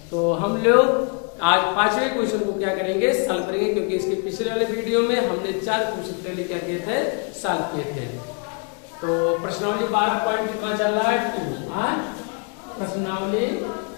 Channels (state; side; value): quieter; right; 38.8 dB